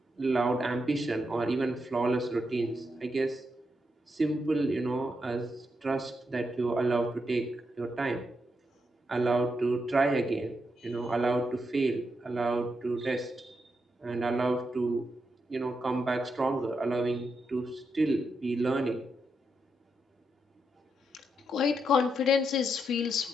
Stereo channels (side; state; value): both; normal; correlation 0.83